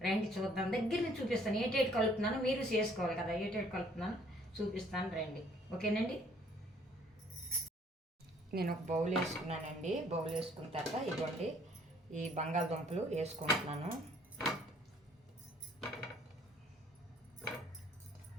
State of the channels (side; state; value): both; normal; correlation 0.60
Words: రండి చూద్దాం, దగ్గర నుంచి చూపిస్తాను ఏటేటి కలుపుతున్నాను. మీరు చేసుకోవాలి కదా, ఏటేటి కలుపుతున్నాను చూపిస్తాను రండి. ఓకేనండి. నేను ఒక బౌల్ వేసుకున్నానండి. బౌల్ వేసుకున్న తర్వాత ఇదిగోండి ఈ బంగాళదుంపలు వేసుకుంటున్నాను.